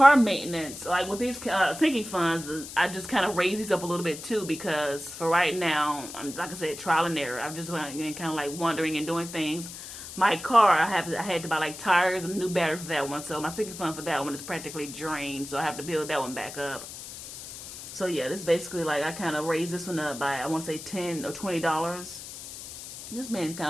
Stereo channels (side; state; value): left; noise; hiss, 12 dB below the sound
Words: maintenance, like with these sinking funds, I just kind of raise these up a little bit too, because for right now, I'm, like I said, trial and error. I'm just kind of like wandering and doing things. My car, I had to buy like tires and a new battery for that one. So my sinking fund for that one is practically drained. So I have to build that one back up. So yeah, this is basically like, I kind of raised this one up by, I want to say $10 or $20. Just been kind